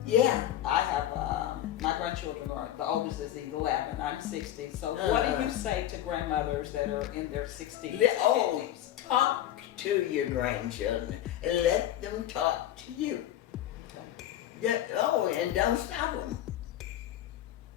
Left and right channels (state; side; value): quieter; right; 12.2 dB